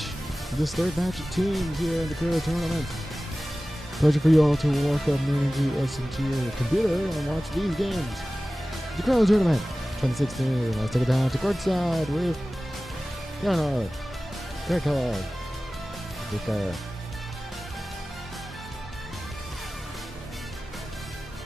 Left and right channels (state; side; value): normal; both; correlation 0.96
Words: of teams here in the LeCrow tournament. Pleasure for you all to walk up into your computer and watch these games. The LeCrow tournament 2016. Let's take it down to courtside with Leonard, Kellogg, Vicker.